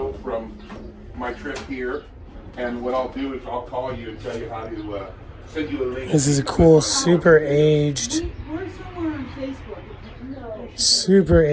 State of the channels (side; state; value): both; identical; correlation 1.00